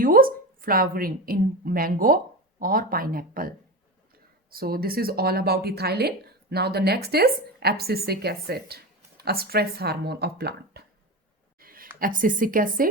flowering in mango, or pineapple. So this is all about ethylene. Now the next is abscisic acid, a stress hormone of plant. Abscisic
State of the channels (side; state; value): both; normal; correlation 0.23